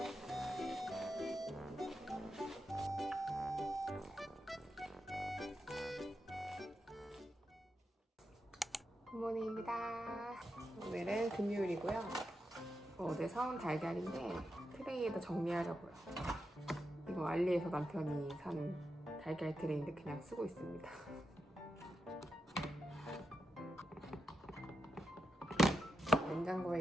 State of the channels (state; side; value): normal; both; correlation 0.86